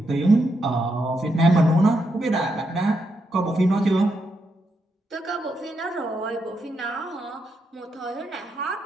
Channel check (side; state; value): both; normal; correlation 0.82